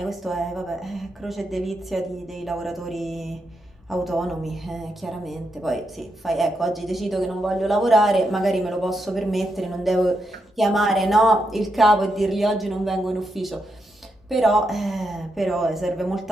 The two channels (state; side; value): normal; both; correlation 0.83